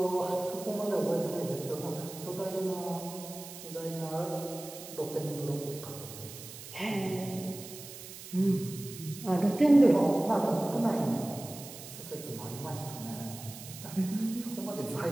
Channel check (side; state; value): right; noise; hiss, 13 dB below the sound